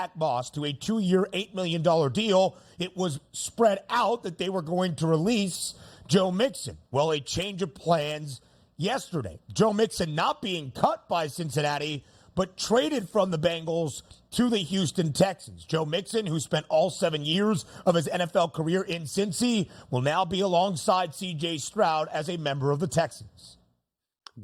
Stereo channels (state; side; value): identical; both; correlation 1.00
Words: Moss to a 2-year, $8 million deal, it was spread out that they were going to release Joe Mixon. Well, a change of plans yesterday. Joe Mixon not being cut by Cincinnati, but traded from the Bengals to the Houston Texans. Joe Mixon, who spent all 7 years of his NFL career in Cincy, will now be alongside C.J. Stroud as a member of the Texans.